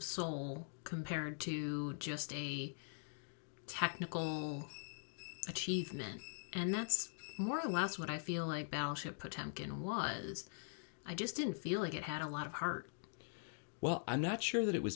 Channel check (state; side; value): silent; right; digital silence